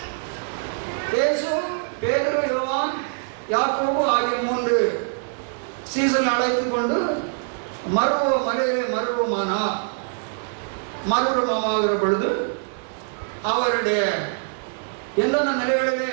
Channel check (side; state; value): left; silent; 63 dB below the other